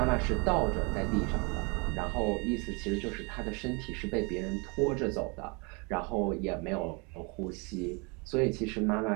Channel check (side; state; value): left; quieter; 31.1 dB